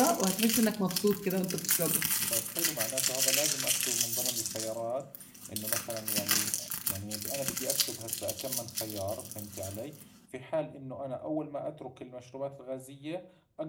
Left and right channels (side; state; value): both; identical; correlation 1.00